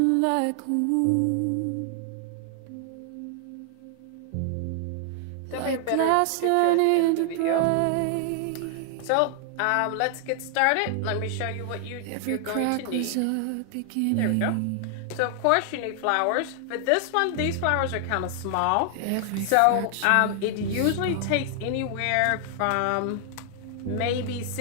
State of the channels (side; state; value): both; different; correlation 0.00